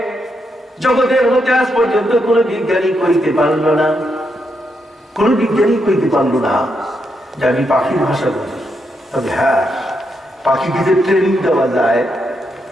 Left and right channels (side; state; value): both; normal; correlation 0.81